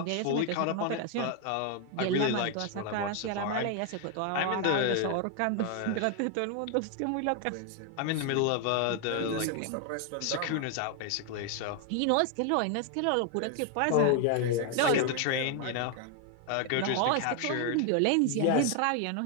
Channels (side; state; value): both; different; correlation 0.00